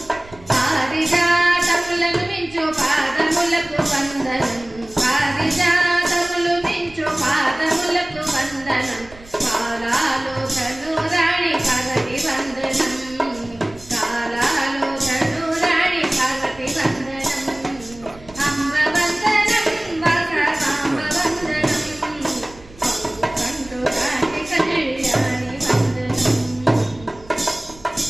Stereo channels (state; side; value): noise; right; rumble, 21 dB below the sound